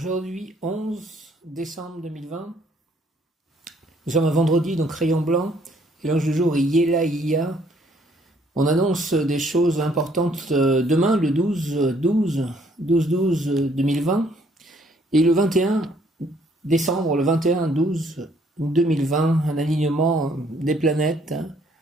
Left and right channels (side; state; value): both; normal; correlation 0.65